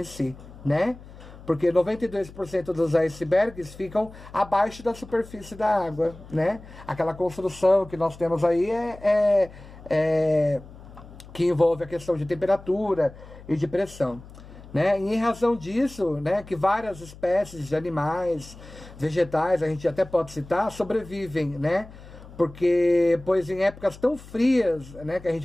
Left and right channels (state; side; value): noise; left; hum, 18 dB below the sound